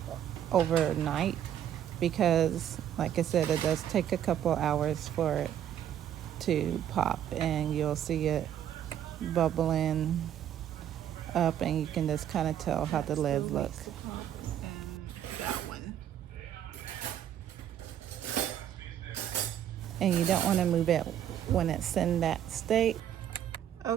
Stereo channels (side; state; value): left; quieter; 10.3 dB